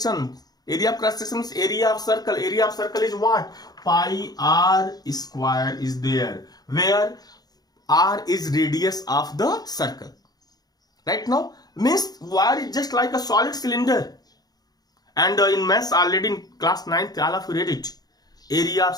Area of cross section is area of circle. Area of circle is what? Pi r square is there, where r is radius of the circle. Right now, means wire is just like a solid cylinder. And in maths already in class 9th, all of you read it. Area of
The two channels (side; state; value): right; late; 0.19 ms